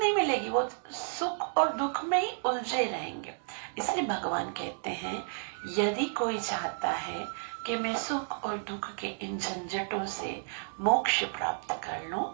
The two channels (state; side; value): silent; left; digital silence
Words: मिलेगी, वो सुख और दुख में ही उलझे रहेंगे। इसलिए भगवान कहते हैं यदि कोई चाहता है कि मैं सुख और दुख के इन झंझटों से मोक्ष प्राप्त कर लूं,